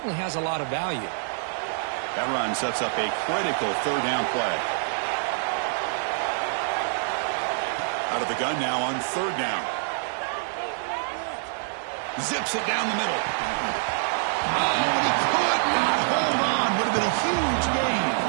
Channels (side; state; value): left; silent; digital silence